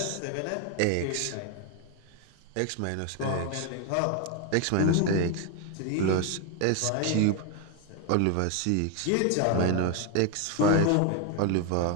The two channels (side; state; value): both; different; correlation 0.01